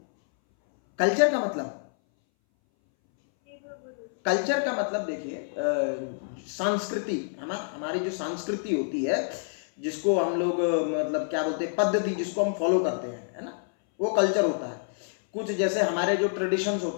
कल्चर का मतलब? कल्चर का मतलब देखिए संस्कृति, हमारी जो संस्कृति होती है जिसको हम लोग मतलब क्या बोलते हैं, पद्धति जिसको हम फॉलो करते हैं, है ना, वो कल्चर होता है। कुछ जैसे हमारे जो ट्रेडिशंस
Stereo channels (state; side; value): silent; right; 60 dB below the other